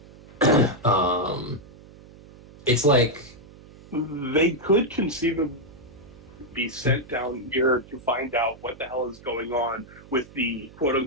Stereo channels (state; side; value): noise; right; hum, 21 dB below the sound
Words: It's like They could conceivably be sent down here to find out what the hell is going on with the